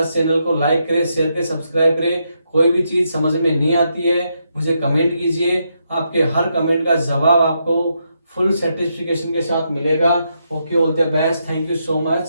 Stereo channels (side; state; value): both; inverted; correlation -0.81